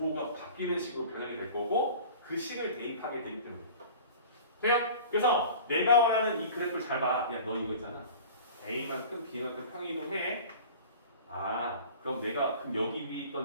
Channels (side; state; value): both; inverted; correlation -0.41